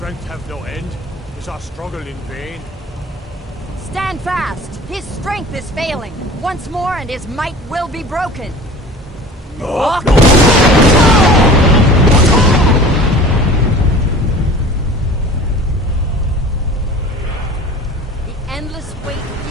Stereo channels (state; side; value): normal; both; correlation 0.42